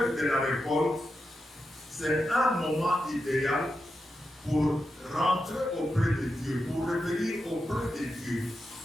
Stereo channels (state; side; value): normal; both; correlation 0.88